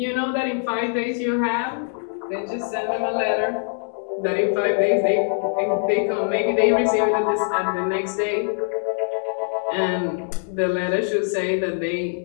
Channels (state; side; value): silent; right; digital silence